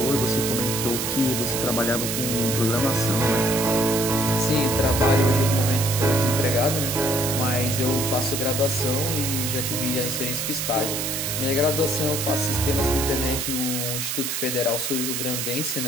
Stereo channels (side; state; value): right; noise; hiss, 2 dB below the sound